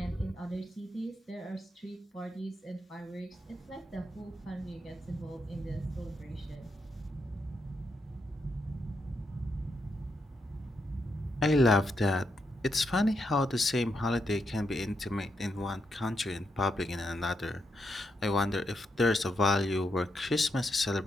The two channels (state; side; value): normal; both; correlation 0.81